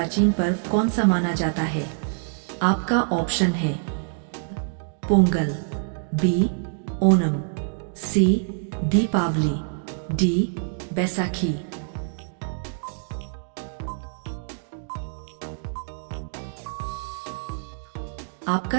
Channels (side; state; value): left; silent; digital silence